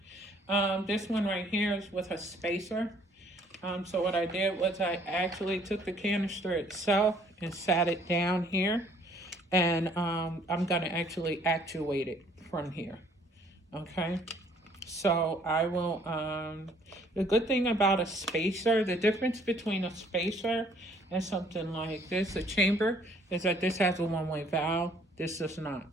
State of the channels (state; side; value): normal; both; correlation 0.61